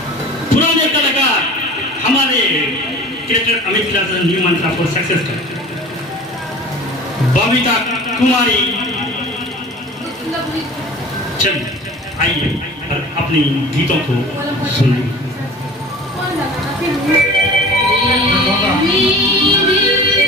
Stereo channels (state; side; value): normal; both; correlation 0.40